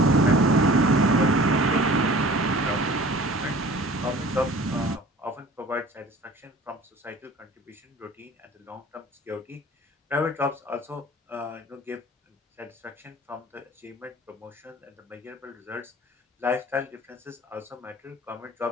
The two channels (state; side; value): normal; both; correlation 0.45